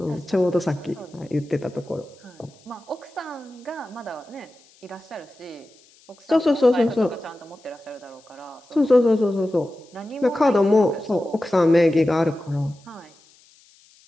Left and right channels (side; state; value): left; noise; hiss, 29 dB below the sound